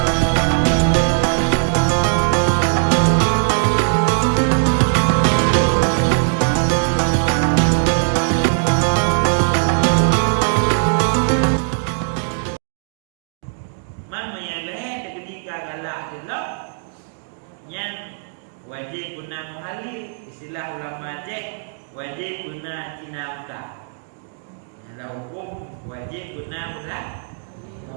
Man menyeleh ketika galak jelok yang wajib guna muhalil, istilah ulama cek wajib guna cinauta. Dalam hukum wajib guna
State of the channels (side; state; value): left; silent; digital silence